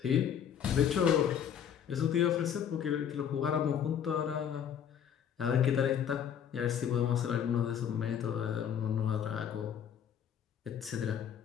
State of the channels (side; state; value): right; quieter; 8.7 dB